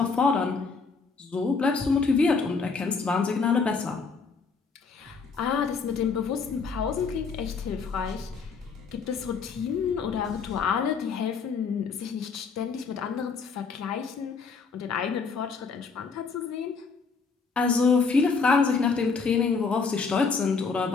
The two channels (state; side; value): quieter; right; 5.0 dB